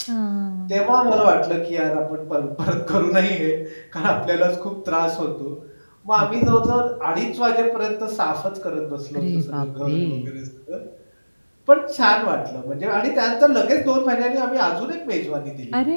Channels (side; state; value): both; inverted; correlation -1.00